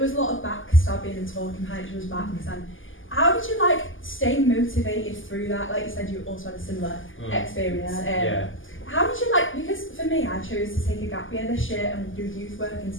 was a lot of backstabbing and talking behind each other's backs. And how did you stay motivated through that? Like you said, you also had a similar experience. How did you because for me, I chose to take a gap year this year and do youth work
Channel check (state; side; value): late; right; 0.58 ms